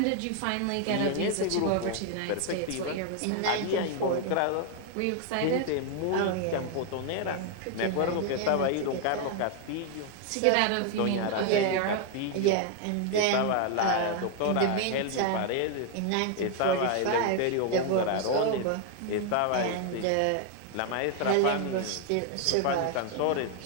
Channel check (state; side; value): different; both; correlation 0.00